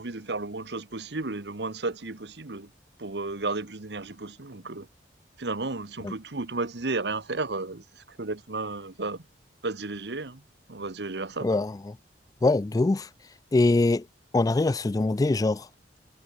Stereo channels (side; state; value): both; normal; correlation 0.60